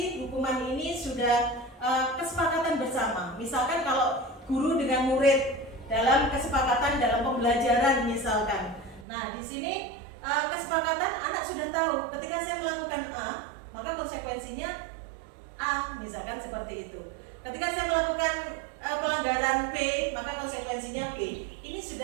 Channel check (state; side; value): drops out; left; at 9.1 s